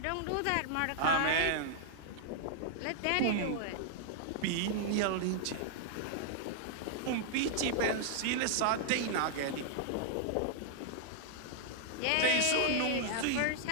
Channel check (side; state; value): both; different; correlation -0.01